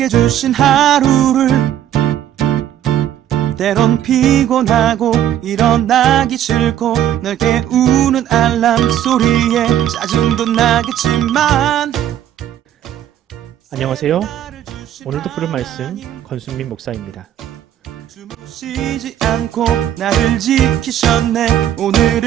주신 하루를 때론 피곤하고 일어나기 싫고 널 깨우는 알람 소리에 짜증도 나겠지만. 안녕하세요. 오늘도 부른 말씀 권순민 목사입니다. 쉬지 않고 나를 지키셨네.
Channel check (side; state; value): left; quieter; 11.1 dB